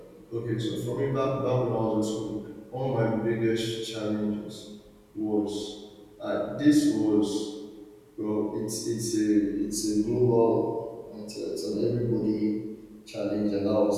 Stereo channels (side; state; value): both; identical; correlation 1.00